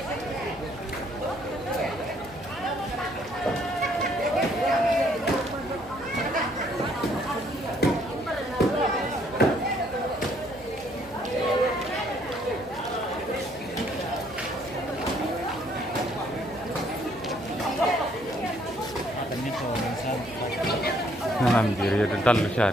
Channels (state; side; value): noise; right; hum, 22 dB below the sound